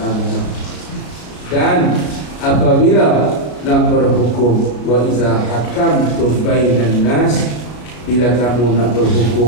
Dan apabila nak berhukum, wa iza hakamtum bainan nas, bila kamu nak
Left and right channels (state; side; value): late; right; 33 ms